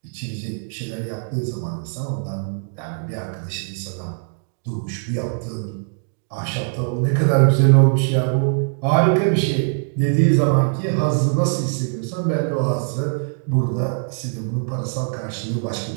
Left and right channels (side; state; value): left; silent; 61 dB below the other